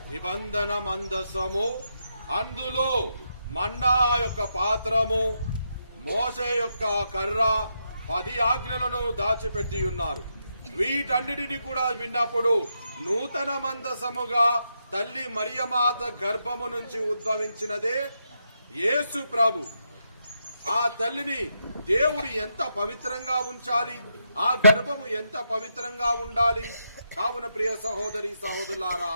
నిబంధన మందసము, అందులో మన్నా యొక్క పాత్రము, మోసే యొక్క కర్ర, 10 ఆజ్ఞలను దాచిపెట్టి ఉన్నారు. వీటన్నిటిని కూడా విన్నప్పుడు నూతన మందసముగా తల్లి మరియమాత గర్భము నుంచి ఉద్భవించినదే యేసు ప్రభు. ఆ తల్లిని దేవుడు ఎంత పవిత్రంగా ఉంచాలి, ఆ గర్భము ఎంత పవిత్రంగా ఉండాలి. కావున ప్రియ సహోదరి సహోదరులారా,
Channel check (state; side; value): inverted; both; correlation -0.82